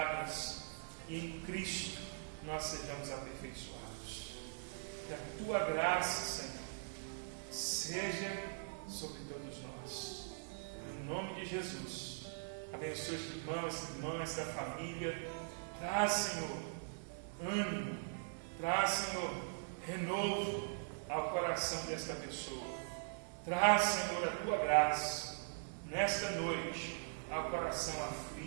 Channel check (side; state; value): left; silent; 50 dB below the other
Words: e em Cristo nós sejamos aperfeiçoados. Que a tua graça, Senhor, seja sobre todos nós. Em nome de Jesus, abençoa este irmão, essa irmã, esta família. Traz, Senhor, ânimo, traz, Senhor, renovo ao coração desta pessoa. Traz, Senhor, a tua graça nesta noite ao coração